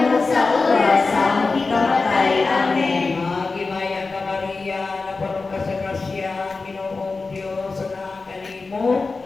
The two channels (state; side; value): quieter; right; 4.0 dB